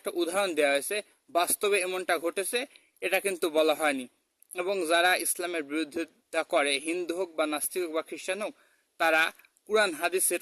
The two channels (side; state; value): both; identical; correlation 1.00